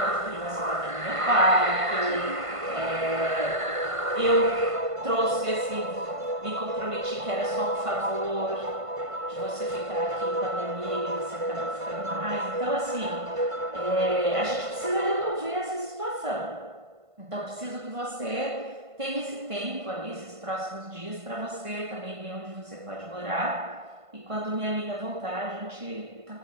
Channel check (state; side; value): late; left; 1.5 ms